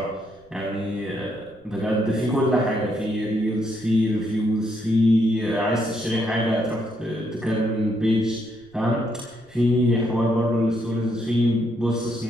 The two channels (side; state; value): right; noise; rumble, 30 dB below the sound